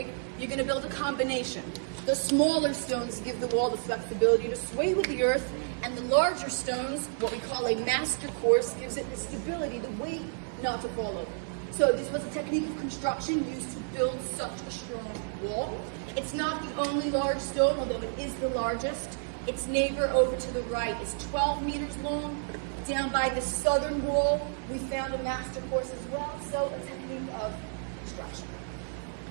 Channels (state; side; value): silent; left; digital silence